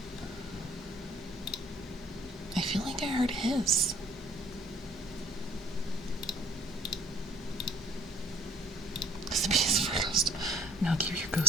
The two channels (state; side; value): normal; both; correlation 0.56